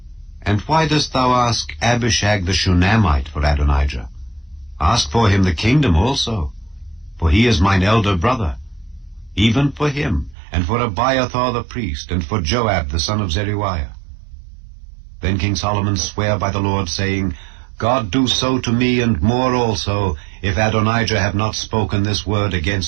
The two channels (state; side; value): drops out; left; at 10.4 s